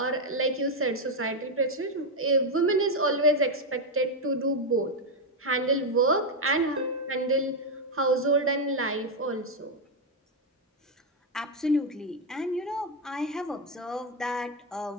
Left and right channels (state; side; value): normal; both; correlation 0.04